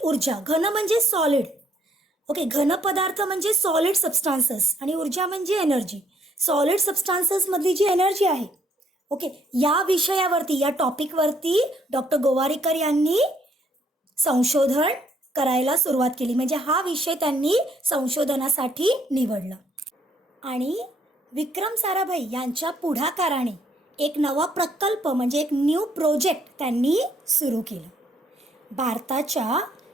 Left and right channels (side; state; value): both; normal; correlation 0.67